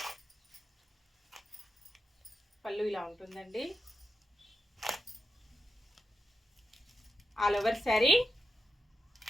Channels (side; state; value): both; normal; correlation 0.87